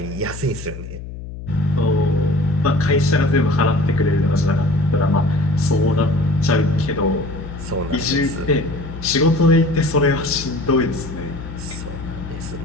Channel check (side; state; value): left; noise; hum, 11 dB below the sound